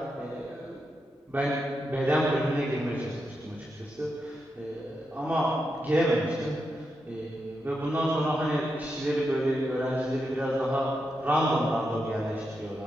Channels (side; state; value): both; normal; correlation 0.85